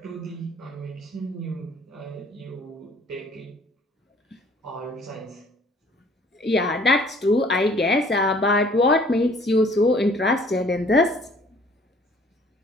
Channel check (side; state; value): both; normal; correlation 0.56